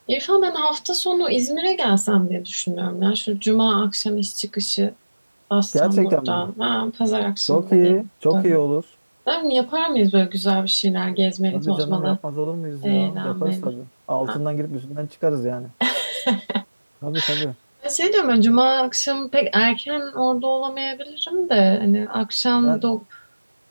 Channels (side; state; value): both; inverted; correlation -1.00